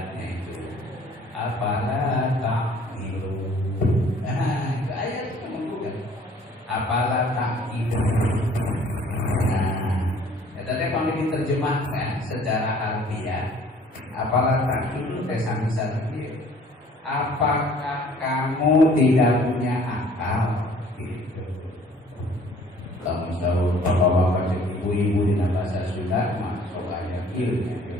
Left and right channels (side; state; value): both; normal; correlation 0.54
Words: itu apalah ta'qilu. Itu ayat itu menggugat. Apalah ta'qilu. Tadi kalau diterjemahkan secara harfiah, apalah ta'qilu sami sarfi. Apakah kamu tidak punya akal? Gitu. Kalau tahu bapak-bapak ibu-ibu di bahasa Sunda masuk ayat ilmu.